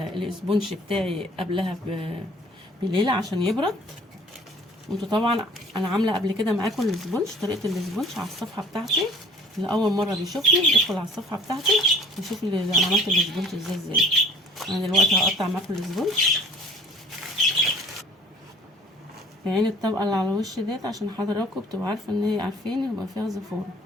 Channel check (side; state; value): both; normal; correlation 0.51